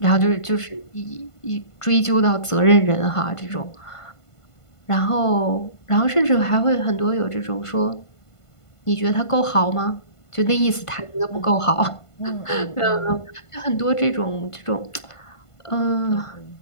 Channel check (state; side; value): late; right; 1.5 ms